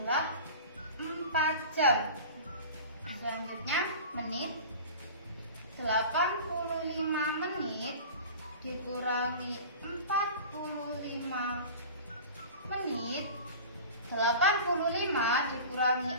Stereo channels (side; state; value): both; inverted; correlation -0.37